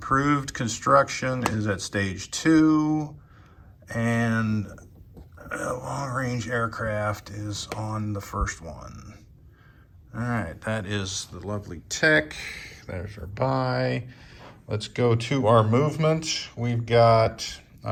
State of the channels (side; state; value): both; identical; correlation 1.00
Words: construction is at stage 2, and long-range aircraft is on the first one. All right, that is the lovely tech. There's our buy. Let's go to our movement. We've got,